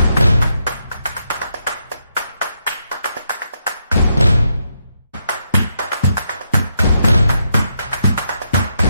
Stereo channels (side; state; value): both; inverted; correlation -0.80